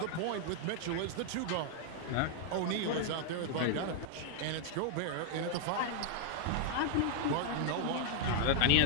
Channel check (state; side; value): different; both; correlation 0.00